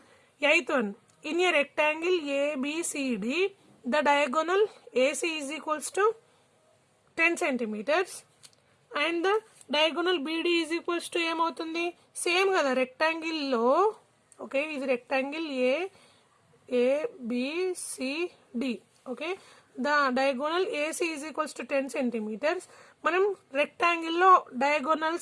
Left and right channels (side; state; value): both; identical; correlation 1.00